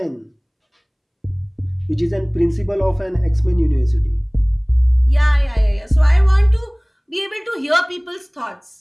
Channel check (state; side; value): identical; both; correlation 1.00